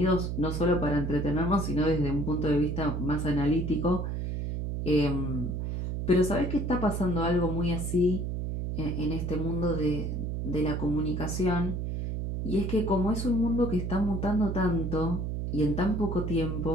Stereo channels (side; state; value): right; noise; hum, 2 dB below the sound